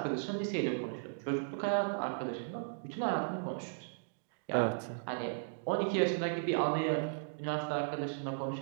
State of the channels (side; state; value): left; silent; digital silence